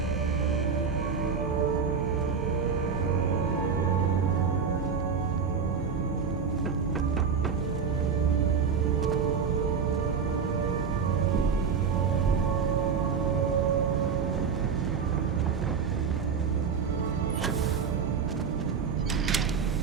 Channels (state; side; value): quieter; left; 6.2 dB